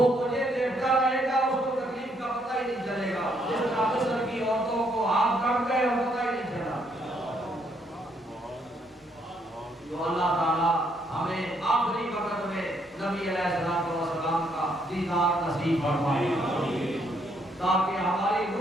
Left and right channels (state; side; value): normal; both; correlation 0.72